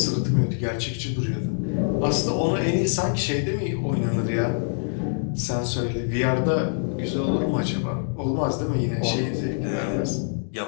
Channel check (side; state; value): right; silent; digital silence